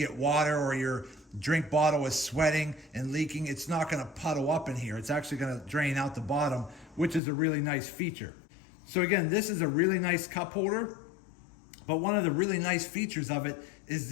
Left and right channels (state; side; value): drops out; right; at 7.2 s